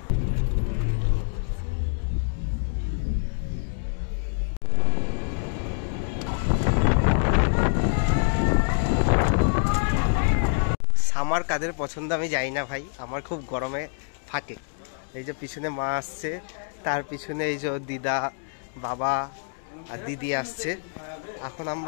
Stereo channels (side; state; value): right; silent; digital silence